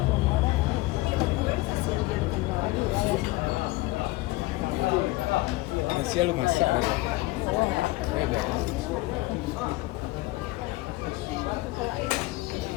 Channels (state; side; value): quieter; right; 19.9 dB